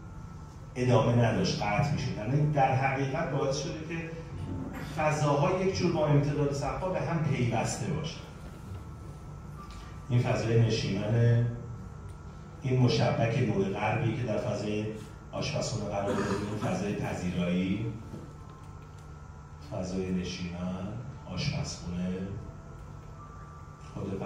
ادامه نداشت، قطع می‌شد. یعنی در حقیقت باعث شده که فضاها یک جور با امتداد سقف‌ها به هم پیوسته باشه. این فضای نشیمن، این مشبک نور غربی که در فضای آشپزخونه قرار داریم، فضای پذیرایی، فضای نشیمن، آشپزخونه، خود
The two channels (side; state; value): both; identical; correlation 1.00